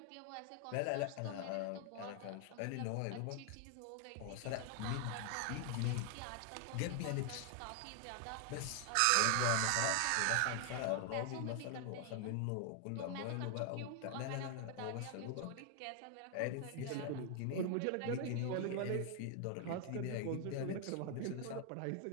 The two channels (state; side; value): different; both; correlation 0.00